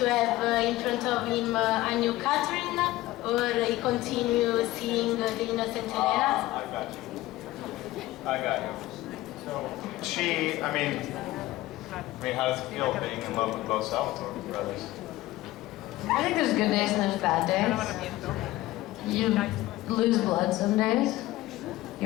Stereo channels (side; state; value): right; quieter; 17.2 dB